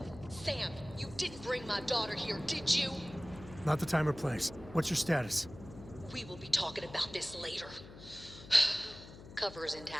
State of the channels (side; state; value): left; noise; hum, 16 dB below the sound